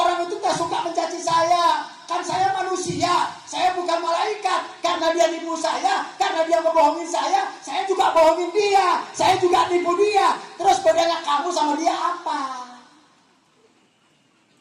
itu tak suka mencaci saya. Kan saya manusia. Saya bukan malaikat. karena dia nipu saya, karena dia ngebohongin saya juga bohongin dia, saya juga nipu dia. Terus bedanya kamu sama dia apa?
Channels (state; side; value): identical; both; correlation 1.00